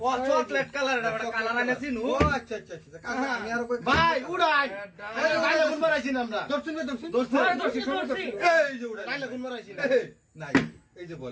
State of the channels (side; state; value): both; identical; correlation 1.00